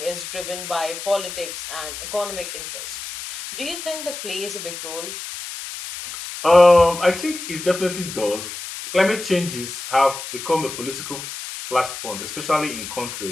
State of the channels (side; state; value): left; noise; hiss, 8 dB below the sound